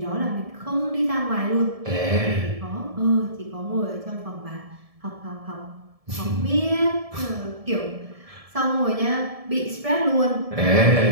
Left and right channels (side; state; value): left; late; 1.7 ms